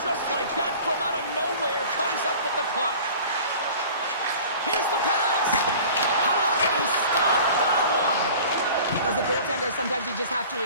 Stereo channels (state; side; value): inverted; both; correlation -0.43